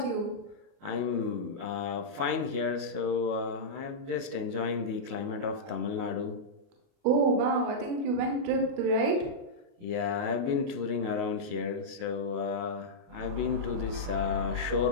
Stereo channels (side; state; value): left; late; 29 ms